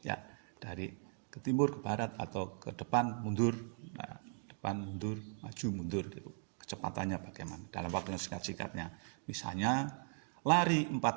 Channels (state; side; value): silent; left; 52 dB below the other